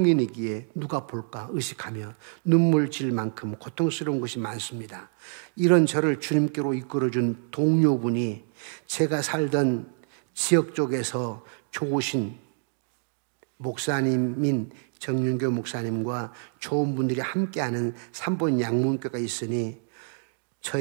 누가 볼까 의식하며 눈물 질 만큼 고통스러운 것이 많습니다. 이런 저를 주님께로 이끌어준 동료분이 제가 살던 지역 쪽에서 좋으신 목사님인 정윤교 목사님과 좋은 분들이 함께하는 삼본 양문교가 있으니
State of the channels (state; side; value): silent; left; digital silence